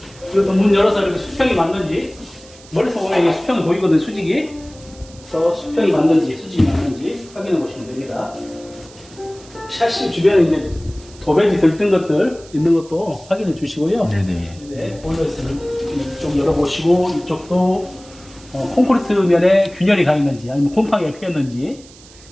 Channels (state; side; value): noise; right; hiss, 23 dB below the sound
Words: 그리고 또 문 열어서 이렇게 수평이 맞는지, 멀리서 보면 이게 수평이 보이거든요, 수직이. 또 수평이 맞는지, 수직이 맞는지 확인해 보시면 됩니다. 샤시 주변에 이제 도배지 들뜬 것들 있는 것도 확인해 주시고요. 네네. 네, 보일러에서는 이쪽 열어보시고, 이쪽도 콘크리트 면에 균열이 가 있는지, 아니면 곰팡이가 피었는지,